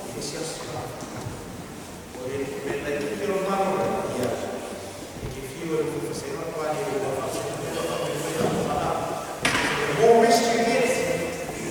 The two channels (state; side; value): identical; both; correlation 1.00